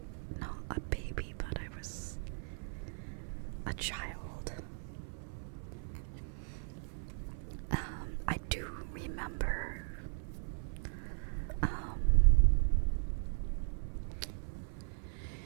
not a baby, but I was a child. I do remember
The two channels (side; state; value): left; silent; 53 dB below the other